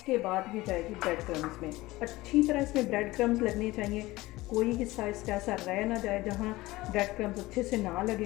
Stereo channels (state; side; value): quieter; right; 19.2 dB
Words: बाद ये जाएगी ब्रेड क्रम्स में। अच्छी तरह इसमें ब्रेड क्रम्स लगने चाहिए। कोई हिस्सा इसका ऐसा रह ना जाए जहाँ ब्रेड क्रम्स अच्छे से ना